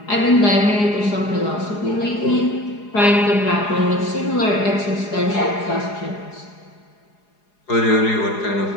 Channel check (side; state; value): right; late; 4.8 ms